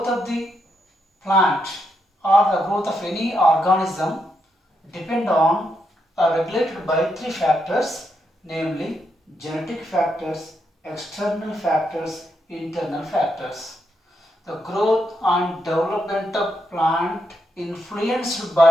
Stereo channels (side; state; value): both; normal; correlation 0.81